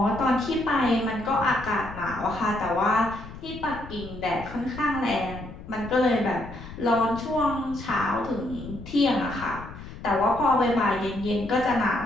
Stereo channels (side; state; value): left; noise; rumble, 13 dB below the sound